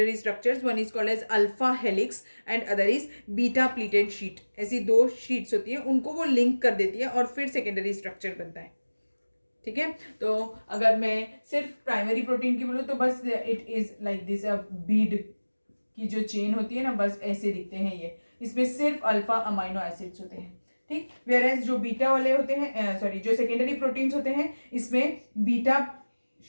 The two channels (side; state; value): both; inverted; correlation -1.00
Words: structures. One is called as alpha helix and other is beta pleated sheet. ऐसी दो sheets होती हैं, उनको वो link कर देती है और फिर सेकेंडरी स्ट्रक्चर बनता है. ठीक है, तो अगर मैं सिर्फ प्राइमरी प्रोटीन की बोलूँ तो बस it is like this. Beed की जो चेन होती है ना, बस ऐसे दिखते हैं ये. इसमें सिर्फ अल्फा अमाइनो एसिड्स होते हैं. ठीक, वेयर एज जो बीटा वाले होते हैं, सॉरी, जो सेकेंडरी प्रोटीन्स होते हैं इसमें बीटा